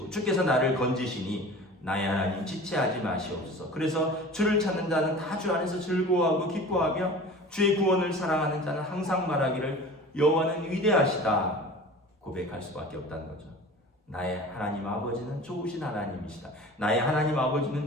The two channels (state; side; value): normal; both; correlation 0.39